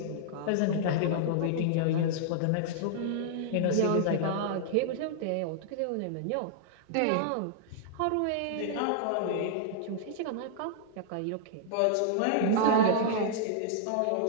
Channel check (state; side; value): different; both; correlation -0.01